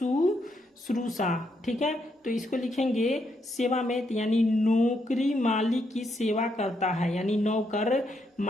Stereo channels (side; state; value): both; normal; correlation 0.78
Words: ठीक है, तो इसको लिखेंगे सेवा में, यानी नौकरी मालिक की सेवा करता है, यानी नौकर